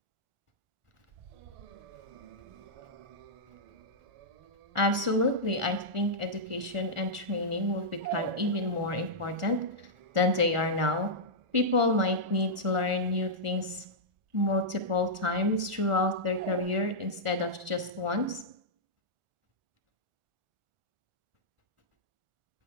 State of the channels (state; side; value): late; left; 1.4 ms